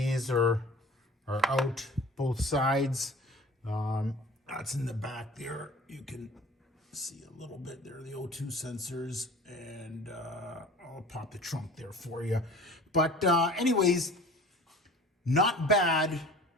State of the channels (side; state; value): both; normal; correlation 0.44